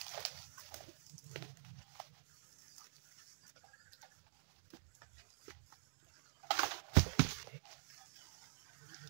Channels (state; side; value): silent; left; digital silence